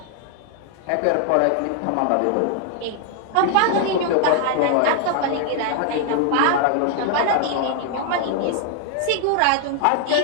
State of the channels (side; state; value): both; different; correlation 0.00